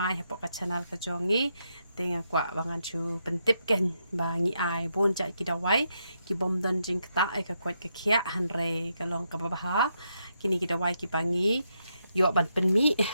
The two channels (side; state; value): both; inverted; correlation -0.81